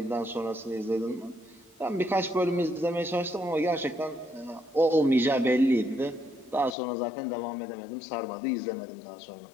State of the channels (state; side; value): drops out; right; at 6.8 s